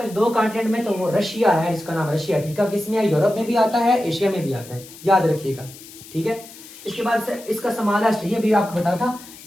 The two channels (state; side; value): noise; left; hiss, 18 dB below the sound